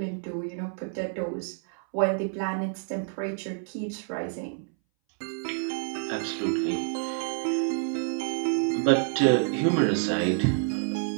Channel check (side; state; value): left; silent; 59 dB below the other